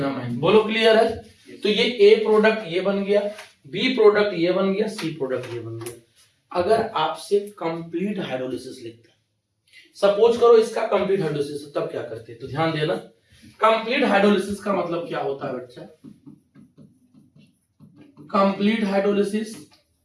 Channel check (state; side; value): identical; both; correlation 1.00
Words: बोलो क्लियर है। तो ये A प्रोडक्ट ये बन गया, B प्रोडक्ट ये बन गया, C प्रोडक्ट ये बन गया। अगर आपसे कंप्लीट हाइड्रोलिसिस लिखता है, सपोज करो इसका कंप्लीट हाइड्रोलिसिस, तब क्या करते हैं, तो ध्यान देना। कंप्लीट हाइड्रोलिसिस का मतलब क्या होता है बच्चा, कंप्लीट हाइड्रोलिसिस